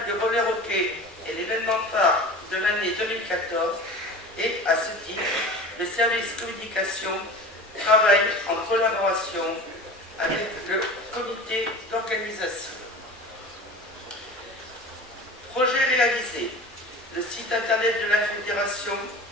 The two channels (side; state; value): both; normal; correlation 0.36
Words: de roller hockey est l'événement phare de l'année 2014 et, à ce titre, le service communication travaille en collaboration avec le comité d'organisation. Projet réalisé. Le site internet de la fédération